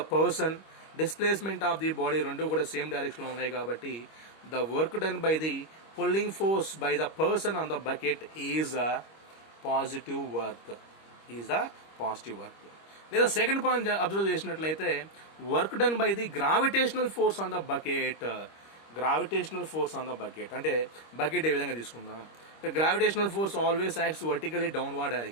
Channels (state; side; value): late; right; 25 ms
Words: person, displacement of the body రెండు కూడా సేమ్ డైరెక్షన్లో ఉన్నాయి కాబట్టి the work done by the pulling force by the person on the bucket is a positive work, is the positive work. లేదా సెకండ్ పాయింట్ అబ్జర్వ్ చేసినట్లయితే, work done by the gravitational force on the bucket, gravitational force on the bucket. అంటే బకెట్ ఏ విధంగా తీసుకుందాం, gravitational force always acts vertically downward